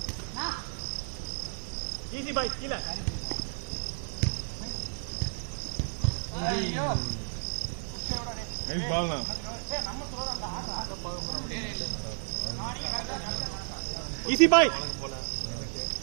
easy bye கீழ ஐயோ nice ball na easy bye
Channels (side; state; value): left; silent; 56 dB below the other